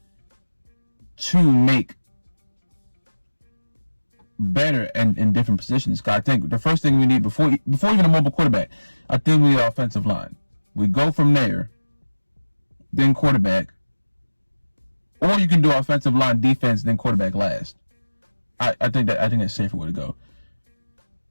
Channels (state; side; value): inverted; both; correlation -1.00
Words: to make better and in different positions. Cause I think the first thing we need before even a mobile quarterback, I think we need an offensive line. We go from there, then quarterback, or you can do offensive line, defense, then quarterback last. I think that's a safer way to go.